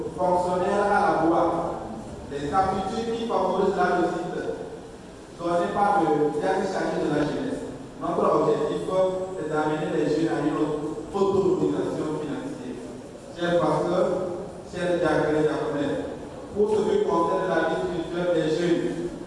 fonctionnaire à la boîte, les aptitudes qui favorisent la réussite données par le diagnostic chargé de la jeunesse. Notre objectif est d'amener les jeunes à une autonomisation financière. Chers pasteurs, chers diacres et diaconnettes, pour ce qui concerne la vie spirituelle des jeunes,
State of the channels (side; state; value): both; identical; correlation 1.00